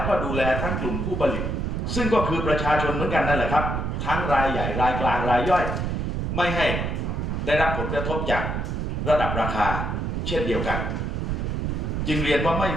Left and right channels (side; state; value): right; noise; rumble, 1 dB below the sound